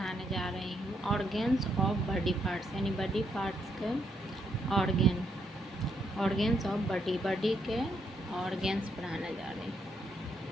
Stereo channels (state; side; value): normal; both; correlation 0.76